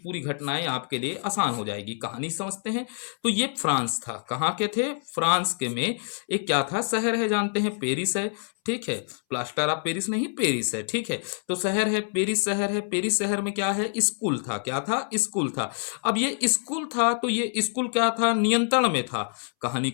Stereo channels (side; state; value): right; silent; 61 dB below the other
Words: घटनाएं आपके लिए आसान हो जाएगी। कहानी समझते हैं। तो ये फ्रांस था। कहाँ के थे? फ्रांस के में एक क्या था? शहर है, जानते हैं, पेरिस है। ठीक है, प्लास्टर ऑफ पेरिस नहीं, पेरिस है। ठीक है, तो शहर है पेरिस, शहर है पेरिस। शहर में क्या है? स्कूल था। क्या था? स्कूल था। अब ये स्कूल था तो ये स्कूल क्या था? नियंत्रण में था। कहानी